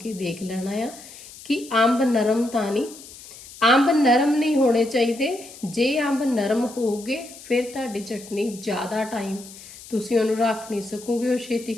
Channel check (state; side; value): noise; left; hiss, 17 dB below the sound